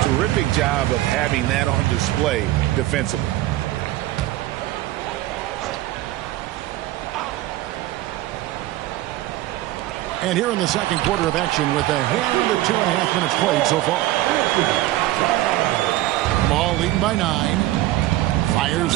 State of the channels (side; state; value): left; quieter; 15.9 dB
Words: Terrific job of having that on display defensively. And here in the second quarter of action with a hand of 2.5 minutes played so far. Ball leading by 9. Fires